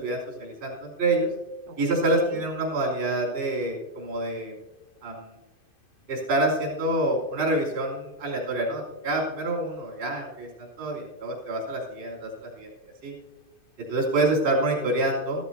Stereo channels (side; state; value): right; late; 2.5 ms